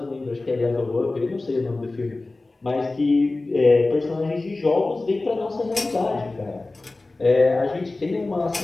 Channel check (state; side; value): quieter; right; 3.2 dB